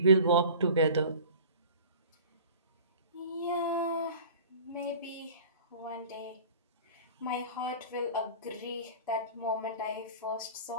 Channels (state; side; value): inverted; both; correlation -0.42